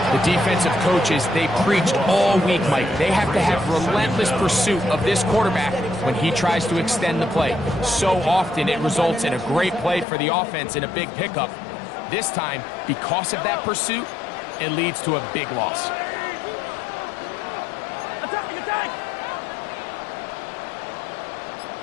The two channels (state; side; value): drops out; right; at 10.1 s